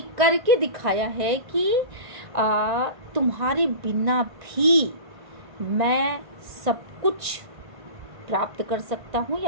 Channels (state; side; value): late; left; 1.9 ms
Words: करके दिखाया है कि तुम्हारे बिना भी मैं सब कुछ प्राप्त कर सकता हूँ